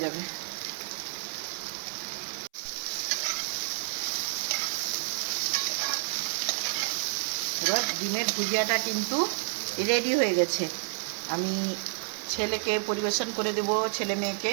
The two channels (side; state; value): left; silent; 58 dB below the other